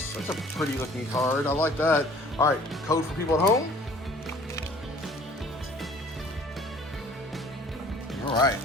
That's a pretty looking card. I like that. All right, code for people at home. All right,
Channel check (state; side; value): normal; both; correlation 0.52